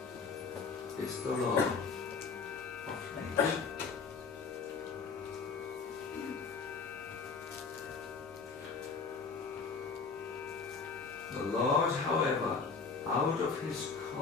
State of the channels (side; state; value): right; quieter; 4.9 dB